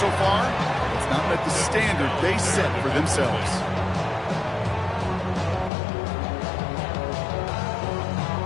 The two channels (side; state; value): right; drops out; at 5.7 s